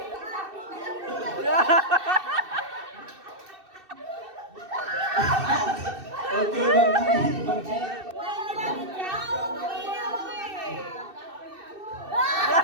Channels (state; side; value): late; left; 2.6 ms